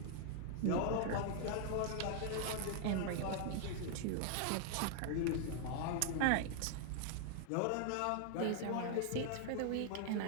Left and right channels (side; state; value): both; different; correlation 0.00